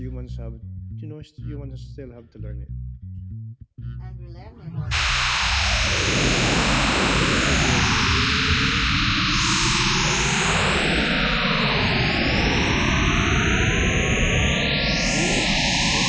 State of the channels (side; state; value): both; identical; correlation 1.00